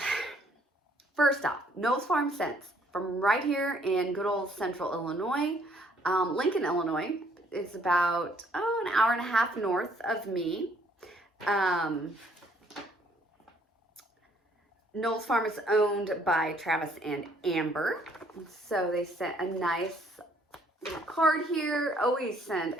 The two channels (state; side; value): normal; both; correlation 0.64